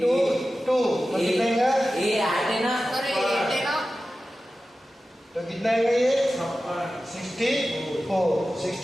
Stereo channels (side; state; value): both; normal; correlation 0.94